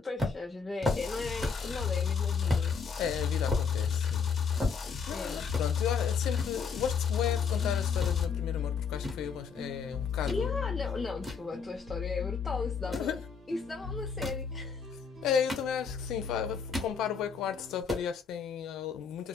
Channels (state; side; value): quieter; right; 5.9 dB